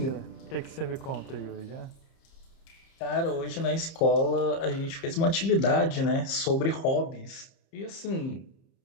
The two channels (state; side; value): late; right; 30 ms